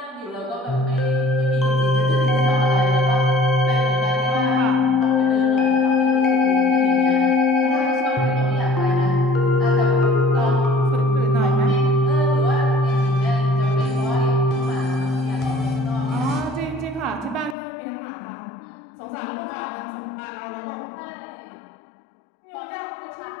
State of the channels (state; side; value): drops out; right; at 17.6 s